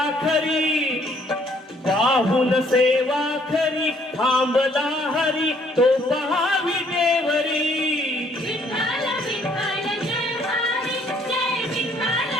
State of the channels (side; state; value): both; normal; correlation 0.64